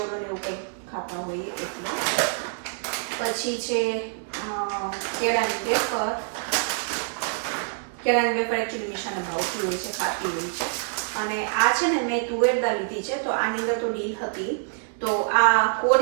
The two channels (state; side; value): silent; left; 61 dB below the other